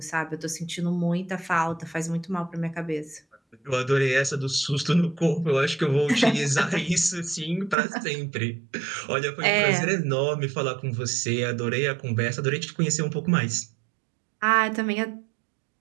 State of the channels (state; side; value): drops out; left; at 7.8 s